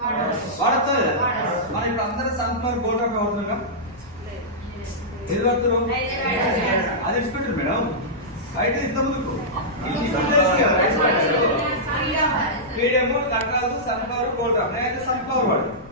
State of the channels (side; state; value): left; noise; rumble, 23 dB below the sound